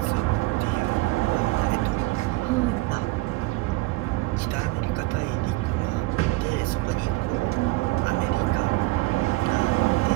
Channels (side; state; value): left; quieter; 21.8 dB